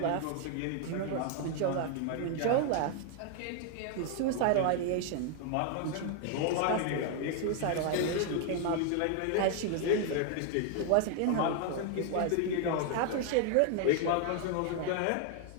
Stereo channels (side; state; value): both; different; correlation 0.00